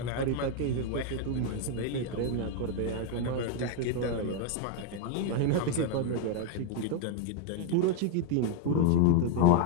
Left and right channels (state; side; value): different; both; correlation 0.00